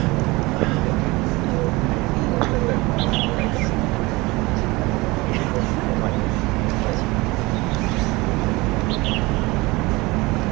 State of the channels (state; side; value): quieter; left; 22.8 dB